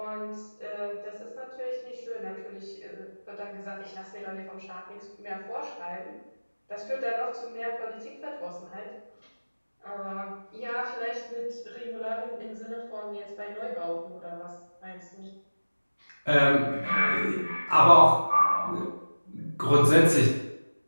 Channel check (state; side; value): inverted; both; correlation -1.00